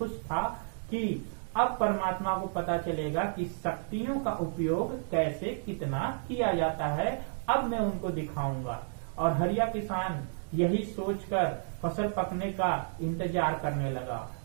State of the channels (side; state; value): left; silent; digital silence